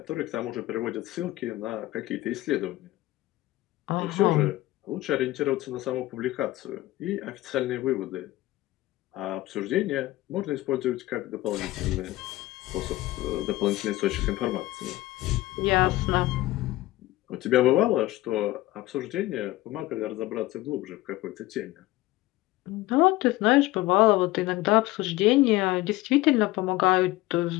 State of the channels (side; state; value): right; quieter; 17.7 dB